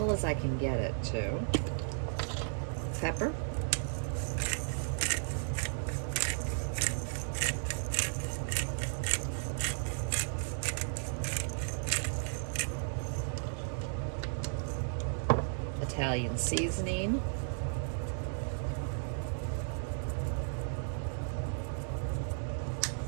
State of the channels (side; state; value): left; silent; digital silence